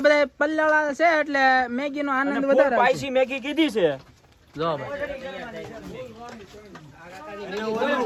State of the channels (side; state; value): both; identical; correlation 1.00